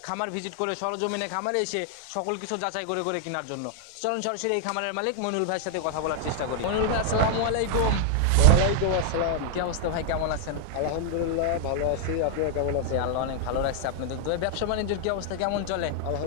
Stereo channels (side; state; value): both; different; correlation 0.00